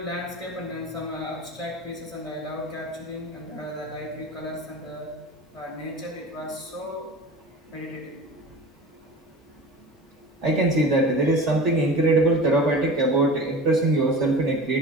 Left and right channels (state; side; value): normal; both; correlation 0.35